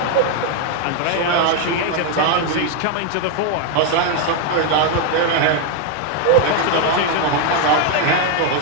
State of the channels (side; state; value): both; different; correlation 0.01